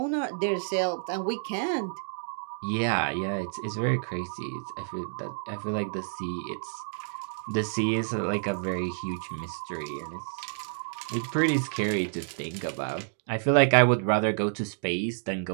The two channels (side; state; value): left; silent; digital silence